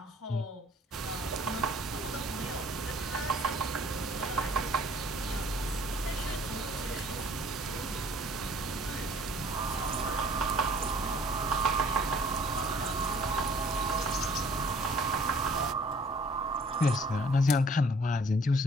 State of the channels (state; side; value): normal; both; correlation 0.56